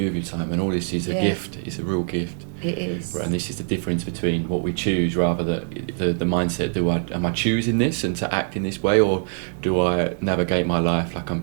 with your time? And all this is a gift. It's a real gift. It is. And this is the difference between what we choose, rather the mindset. Am I choosing this and to act in this way, or do I navigate my life like I'm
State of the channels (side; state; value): left; silent; 63 dB below the other